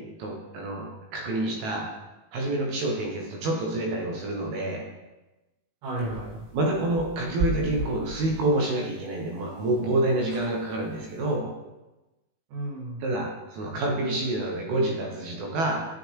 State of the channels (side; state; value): left; late; 18 ms